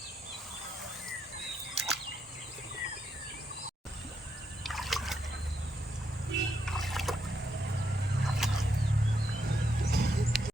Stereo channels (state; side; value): normal; both; correlation 0.80